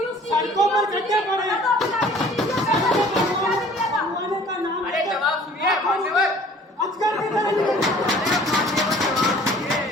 सड़कों पर गड्ढे पड़े बनवाने का नाम। अरे जवाब सुनिए मान्यवर, अजगर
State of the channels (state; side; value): normal; both; correlation 0.51